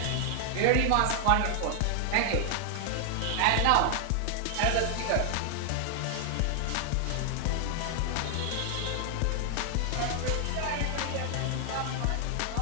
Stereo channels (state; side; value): different; both; correlation 0.00